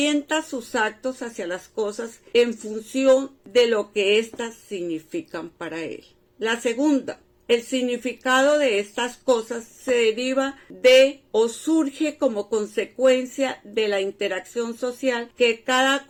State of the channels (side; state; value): both; identical; correlation 1.00